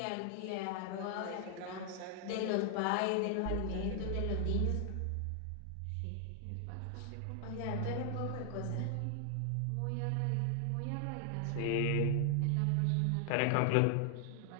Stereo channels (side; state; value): both; different; correlation 0.00